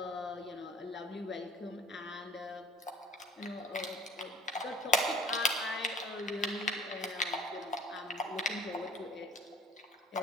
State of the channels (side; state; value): both; normal; correlation 0.50